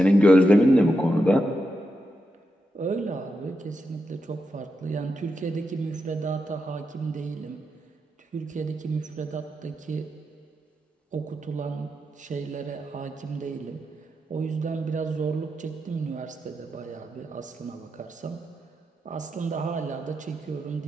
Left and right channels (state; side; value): normal; both; correlation 0.86